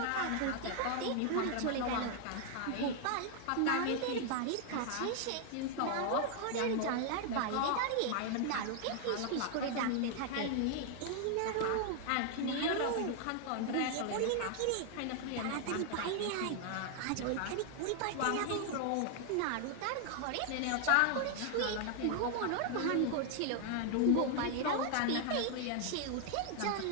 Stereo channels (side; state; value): both; different; correlation 0.00